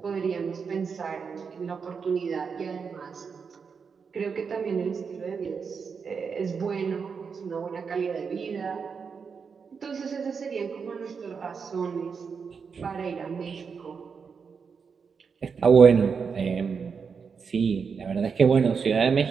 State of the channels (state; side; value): quieter; left; 5.8 dB